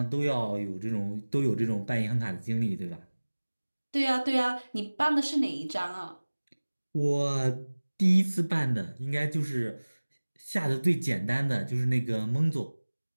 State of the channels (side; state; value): both; inverted; correlation -1.00